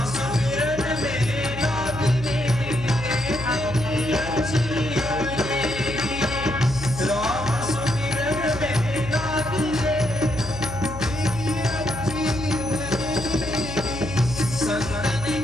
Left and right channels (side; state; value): left; noise; hum, 10 dB below the sound